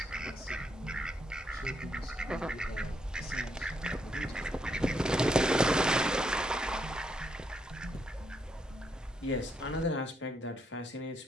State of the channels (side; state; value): both; normal; correlation 0.77